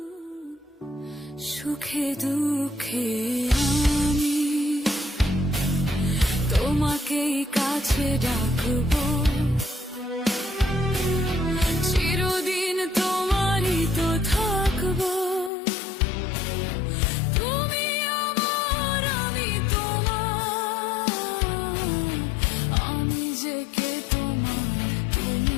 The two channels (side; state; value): right; drops out; at 15.5 s